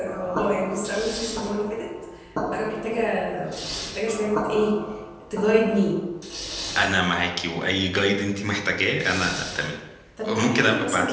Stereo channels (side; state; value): both; identical; correlation 1.00